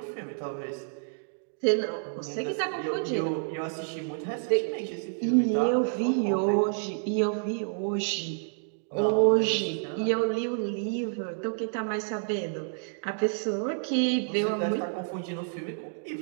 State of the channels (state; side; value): silent; left; digital silence